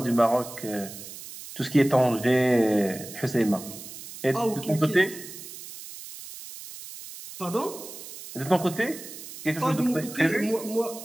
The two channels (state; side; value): noise; right; hiss, 13 dB below the sound